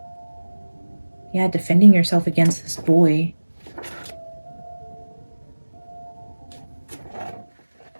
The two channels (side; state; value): both; inverted; correlation -1.00